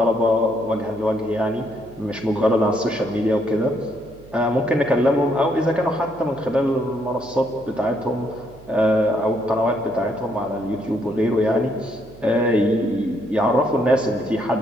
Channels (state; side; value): noise; right; hum, 21 dB below the sound